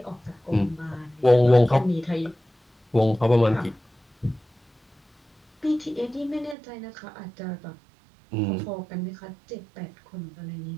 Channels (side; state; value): left; drops out; at 6.6 s